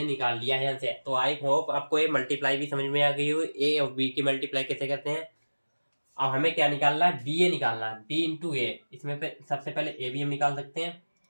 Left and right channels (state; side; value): inverted; both; correlation -1.00